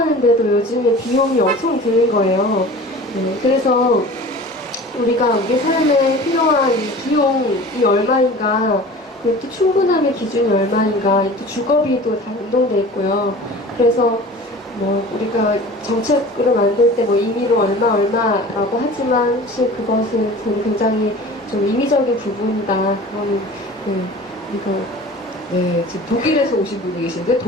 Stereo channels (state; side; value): normal; both; correlation 0.40